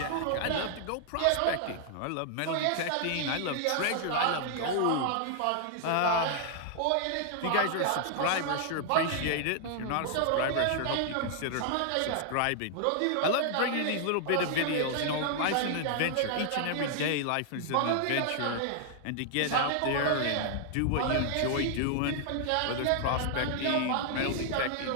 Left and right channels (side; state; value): both; different; correlation 0.00